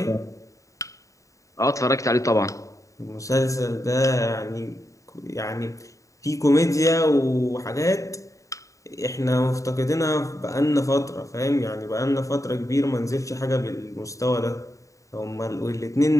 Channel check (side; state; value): right; late; 0.16 ms